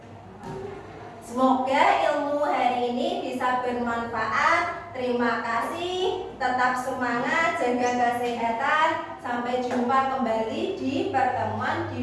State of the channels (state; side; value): identical; both; correlation 1.00